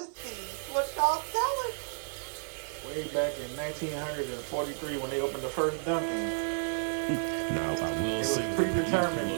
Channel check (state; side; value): silent; left; 57 dB below the other